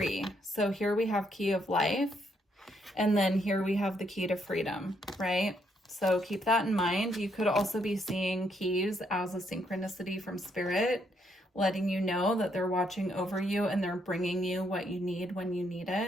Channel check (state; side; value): normal; both; correlation 0.74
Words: So here we have key of life. And then here we have the key to freedom, right? So keep that in mind. You could also be seeing keys as a synchronicity from spirit, letting you know that they're watching over you and they're bringing you what you need when you need